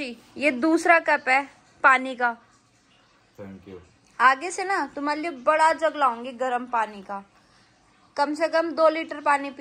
ये दूसरा कप है पानी का। Thank you. आगे से ना तुम्हारे लिए बड़ा जग लाऊंगी गर्म पानी का। कम से कम 2 लीटर पानी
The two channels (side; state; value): both; identical; correlation 1.00